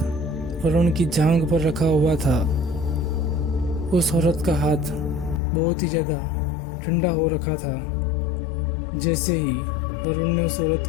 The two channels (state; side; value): drops out; right; at 5.4 s